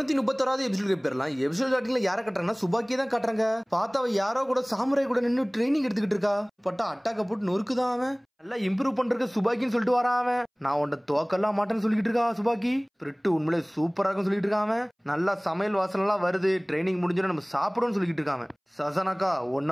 எபிசோட் போயிடலாம். எபிசோட் ஸ்டார்டிங்ல யாரை கட்டுறாங்கன்னா சுபாக்கியை தான் காட்டுறாங்க. பார்த்தா அவ யாரோ கூட சாமுராய் கூட நின்று ட்ரைனிங் எடுத்துக்கிட்டு இருக்கா. பட்டா அட்டாக்க போட்டு நொறுக்குதான் அவன். நல்லா இம்ப்ரூவ் பண்றதுக்கு சுபாக்கின்னு சொல்லிட்டு வரான் அவன். நான் உன்ட தோக்கெல்லாம் மாட்டேன்னு சொல்லிட்டு இருக்கா சுபாக்கி. பிரிட்டு உண்மையிலே சூப்பரா இருக்கும் சொல்லிட்டு இருக்கான். நல்லா சமையல் வாசனை எல்லாம் வருது. ட்ரைனிங் முடிஞ்சோன்னு நம்ம சாப்பிடுவோம்னு சொல்லிட்டு இருக்காங்க. சசனாக்கா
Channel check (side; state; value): both; identical; correlation 1.00